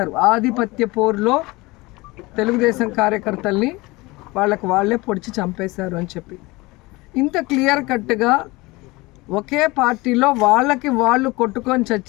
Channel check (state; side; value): quieter; right; 22.5 dB